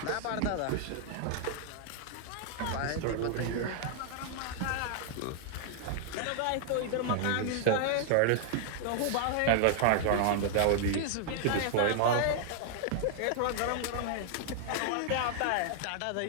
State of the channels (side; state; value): both; different; correlation 0.00